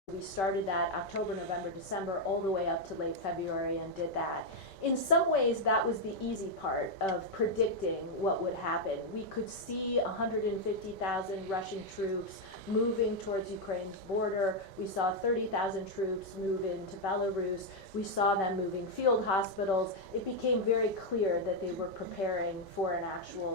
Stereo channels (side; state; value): right; late; 5.2 ms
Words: We started that October, November, December, all the way up to late February and did that. In some ways, that was the easy part of predicting what would happen. We could see 150,000 Russian troops moving towards Ukraine's border. We saw 30,000 troops move into Belarus. We saw them moving field hospitals. It became very clear that they were preparing for an